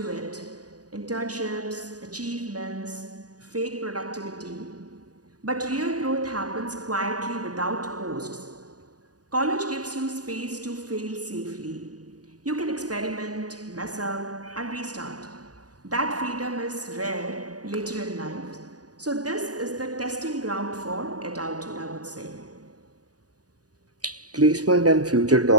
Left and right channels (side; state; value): left; late; 0.68 ms